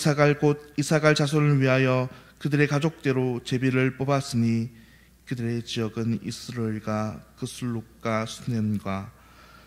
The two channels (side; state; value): both; identical; correlation 1.00